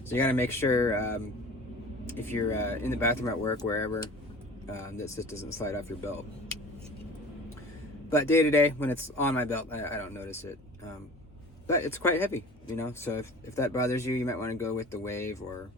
So you gotta make sure if you're in the bathroom at work, wherever, that just doesn't slide off your belt. But day to day, when it's on my belt, I don't notice it. But it's quite heavy, you know, so if that bothers you, you might want to go with the Wave or,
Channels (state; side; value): normal; both; correlation 0.41